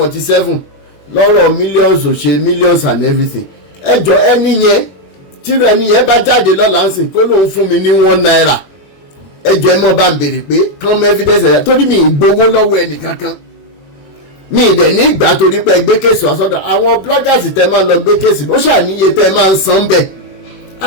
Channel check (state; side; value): late; right; 21 ms